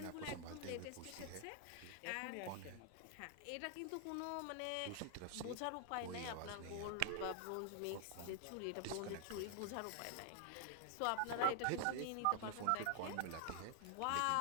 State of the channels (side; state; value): both; different; correlation 0.00